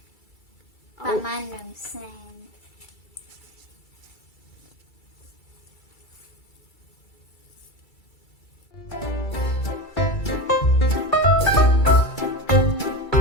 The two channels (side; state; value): right; late; 2.3 ms